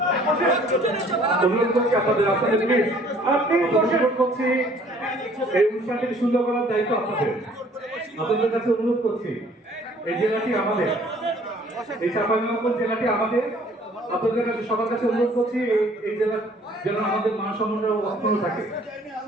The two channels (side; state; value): both; normal; correlation 0.57